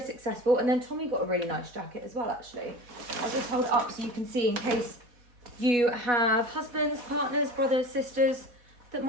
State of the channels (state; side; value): late; left; 4.1 ms